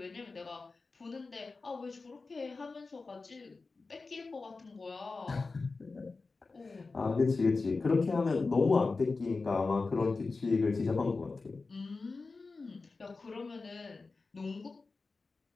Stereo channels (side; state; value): right; quieter; 4.0 dB